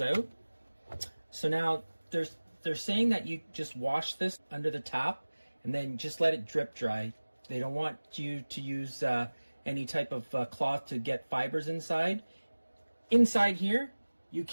So now they're saying that you just wash this under the tap, and then just let it drip dry. They don't want you to use any type of cloth to get fibers inside. Inside here, you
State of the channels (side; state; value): both; inverted; correlation -1.00